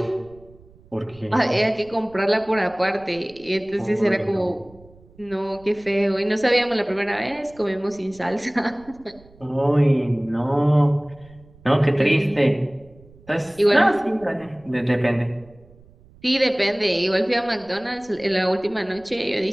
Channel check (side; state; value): right; noise; rumble, 25 dB below the sound